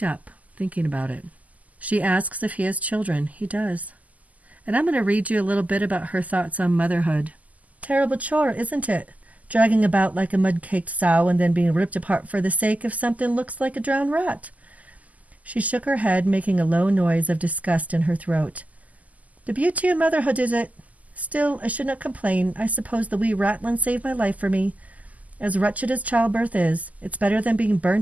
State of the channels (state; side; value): late; left; 0.076 ms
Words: up, thinking about it. She asks if he has children. He does. And I'm going to read you a little bit about her thoughts on motherhood. Terrible chore, isn't it? Dragging about like a mud-caked sow and then being ripped apart for the sake of something looks like a drowned rat. She shook her head, making a low noise of disgust in her throat. The beauty of motherhood is it. Still, I should not complain. I suppose the wee rattlin saved my life for me. As wretched as childbirth is, it's better than being